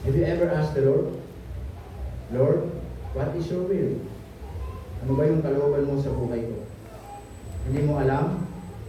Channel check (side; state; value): both; identical; correlation 1.00